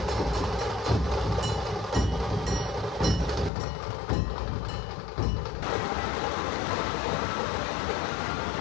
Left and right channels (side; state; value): right; drops out; at 3.5 s